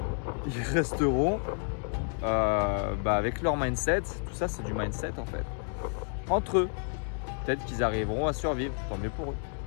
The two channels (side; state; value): right; silent; 55 dB below the other